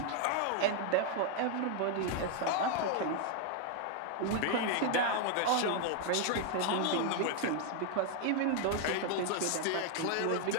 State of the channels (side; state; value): both; different; correlation 0.00